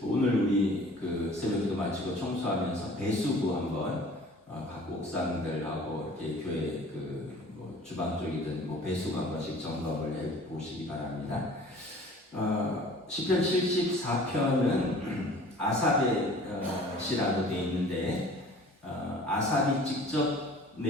오늘 우리 그 새벽기도 마치고 청소하면서 배수구 한번 각 옥상들하고 이렇게 교회 뭐 주방 쪽이든 뭐 배수구 한 번씩 점검을 해 보시기 바랍니다. 시편 74편은 아삽의 시라고 되어 있는데 아삽이 직접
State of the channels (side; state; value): both; normal; correlation 0.48